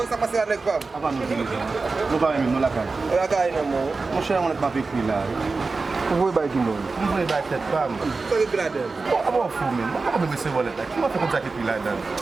ça passe avec femme. Avant nous pas même nous la caille. La caille non mon. Mon cher on est pas vécu là. Vous voyez pas qui non. Vous voyez pas tête femme. Ça est gradé. Bon, fou même. Comment me c'est voler là? Qui m'a fait comme ça qui là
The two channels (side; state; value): left; quieter; 4.0 dB